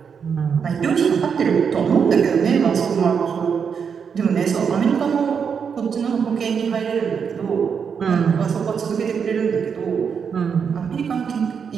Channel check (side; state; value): left; quieter; 6.6 dB